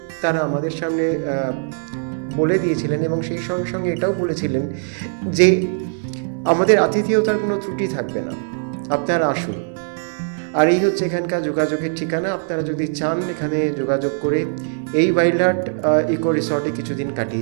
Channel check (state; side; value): silent; left; digital silence